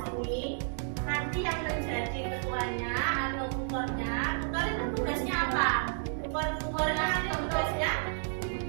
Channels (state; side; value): silent; left; digital silence